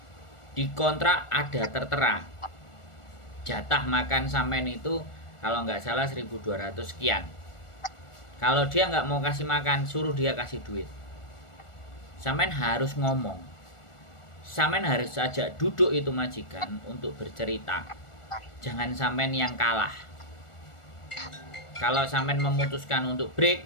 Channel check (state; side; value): late; right; 1.4 ms